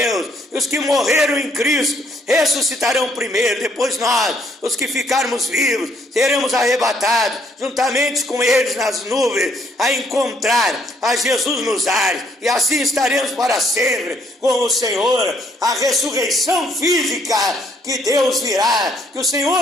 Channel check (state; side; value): normal; both; correlation 0.67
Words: e os que morreram em Cristo ressuscitarão primeiro. Depois nós, os que ficarmos vivos, seremos arrebatados juntamente com eles nas nuvens, a encontrar a Jesus nos ares, e assim estaremos para sempre com o Senhor. A ressurreição física que Deus virá, que o